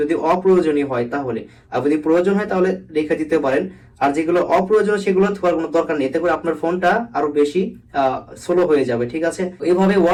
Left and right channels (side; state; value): both; identical; correlation 1.00